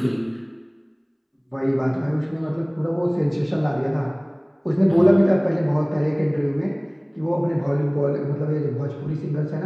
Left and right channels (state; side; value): identical; both; correlation 1.00